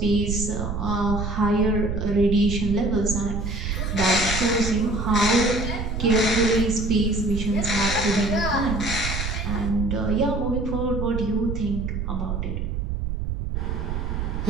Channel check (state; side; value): noise; right; rumble, 3 dB below the sound